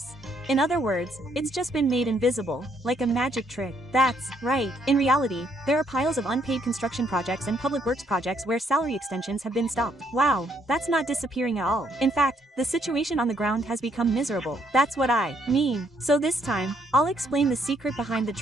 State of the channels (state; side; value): normal; both; correlation 0.71